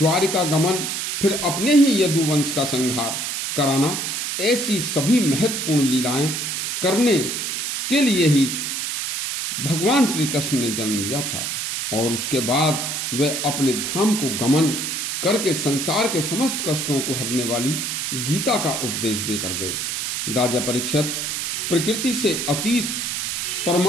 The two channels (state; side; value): noise; right; hiss, 2 dB below the sound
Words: गमन, फिर अपने ही यदुवंश का संहार कराना, ऐसी सभी महत्वपूर्ण लीलाएं करने के लिए ही भगवान श्री कृष्ण ने जन्म लिया था और उसके बाद वे अपने धाम को गमन करके संसार के समस्त कष्टों को हरने वाली गीता का उपदेश देकर गए। राजा परीक्षित, प्रकृति से अतीत